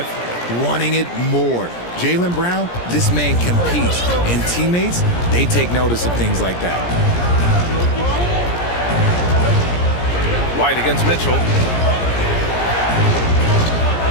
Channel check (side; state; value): right; late; 17 ms